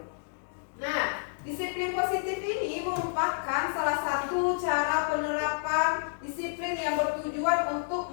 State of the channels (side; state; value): right; silent; digital silence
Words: Nah, disiplin positif ini merupakan salah satu cara penerapan disiplin yang bertujuan